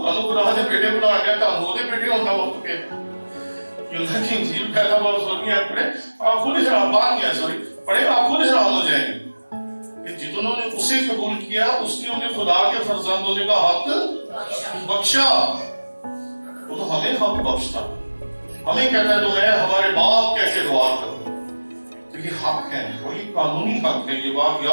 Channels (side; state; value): both; inverted; correlation -1.00